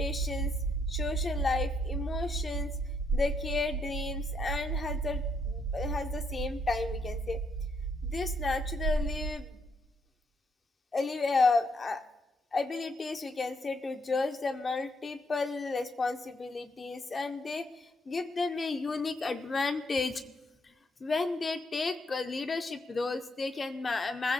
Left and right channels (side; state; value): both; normal; correlation 0.74